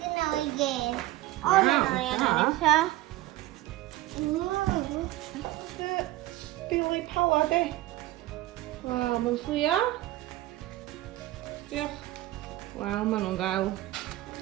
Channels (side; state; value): left; quieter; 16.9 dB